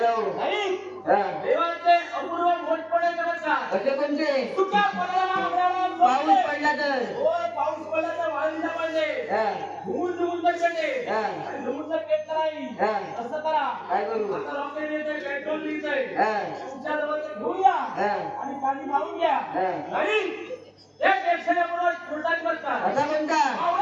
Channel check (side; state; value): both; identical; correlation 1.00